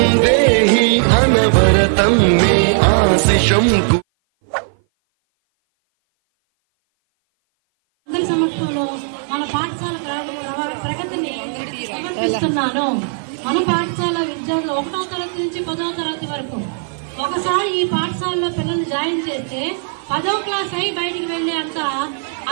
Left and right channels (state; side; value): silent; left; 57 dB below the other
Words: देहि अनवरतं मे आशिषं। అందరి సమక్షంలో మన పాఠశాల ప్రగతిని సమర్పిస్తున్నాను. మన పాఠశాల విద్యార్థులు 1వ తరగతి నుంచి 10వ తరగతి వరకు ఒకసారి ఈ పాఠశాలలో పిల్లల్ని జాయిన్ చేస్తే 10వ క్లాస్ అయి బయటికి వెళ్లే అంత